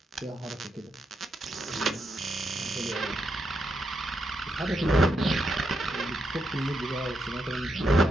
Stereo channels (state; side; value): normal; both; correlation 0.82